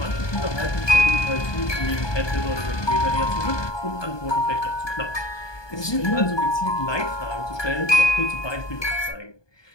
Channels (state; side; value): late; right; 1.2 ms